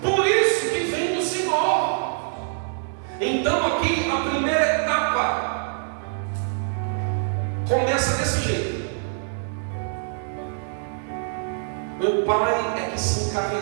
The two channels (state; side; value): silent; left; digital silence